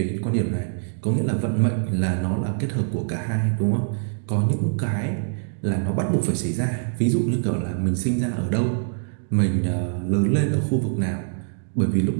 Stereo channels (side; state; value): left; silent; digital silence